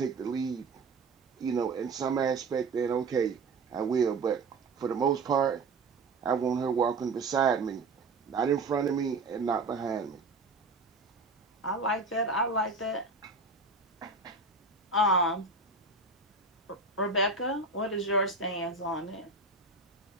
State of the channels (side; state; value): left; quieter; 3.8 dB